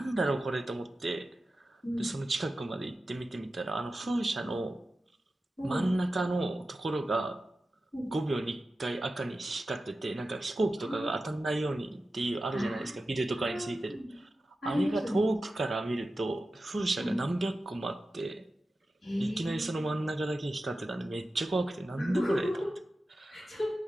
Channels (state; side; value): normal; both; correlation 0.93